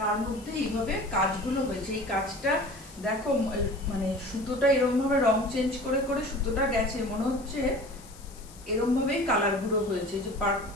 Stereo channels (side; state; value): left; noise; hiss, 21 dB below the sound